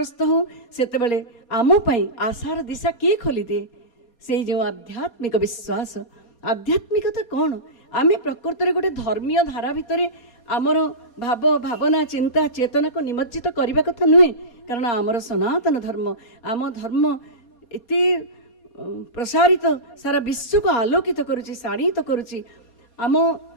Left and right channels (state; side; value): late; right; 4.2 ms